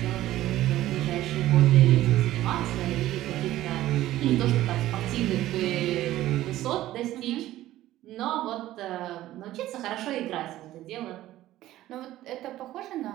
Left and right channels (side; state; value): left; quieter; 14.7 dB